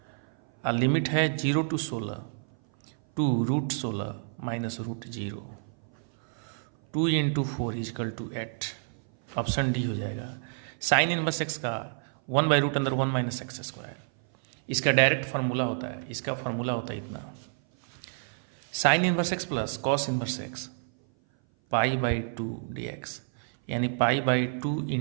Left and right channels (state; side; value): silent; left; 57 dB below the other